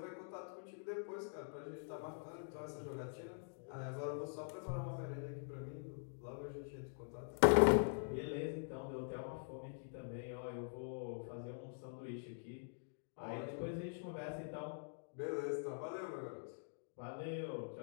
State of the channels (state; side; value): silent; right; digital silence